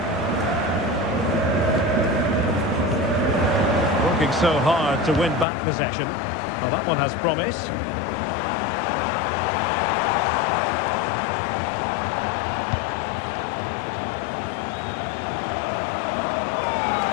Working so hard to win back possession. Well, that one has promise.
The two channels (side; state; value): right; drops out; at 5.5 s